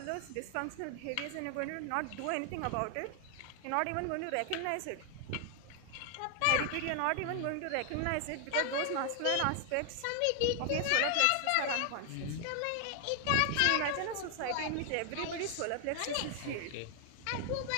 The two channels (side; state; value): both; different; correlation 0.00